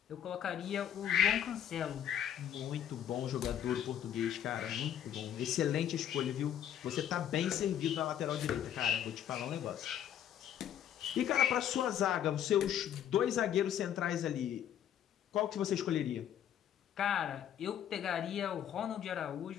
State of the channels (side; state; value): right; quieter; 10.1 dB